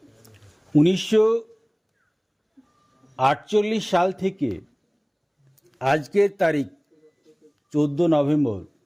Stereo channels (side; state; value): both; identical; correlation 1.00